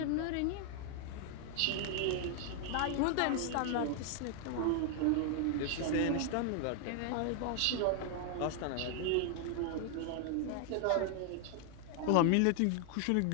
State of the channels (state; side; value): different; both; correlation 0.00